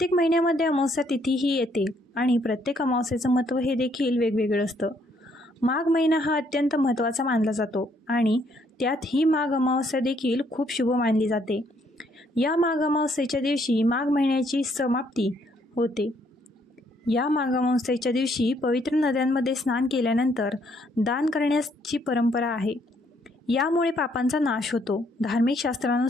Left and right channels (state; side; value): normal; both; correlation 0.69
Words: महिन्यामध्ये अमावस्या तिथी ही येते आणि प्रत्येक अमावस्येचं महत्त्व हे देखील वेगवेगळं असतं. माघ महिना हा अत्यंत महत्त्वाचा मानला जातो आणि त्यात ही माघ अमावस्या देखील खूप शुभ मानली जाते. या माघ अमावस्येच्या दिवशी माघ महिन्याची समाप्ती होते. या माघ अमावस्येच्या दिवशी पवित्र नद्यांमध्ये स्नान केल्यानंतर दान करण्याची परंपरा आहे. यामुळे पापांचा नाश होतो. धार्मिक